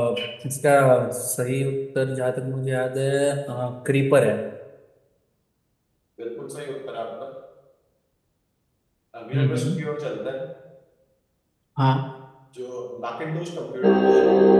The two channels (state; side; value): identical; both; correlation 1.00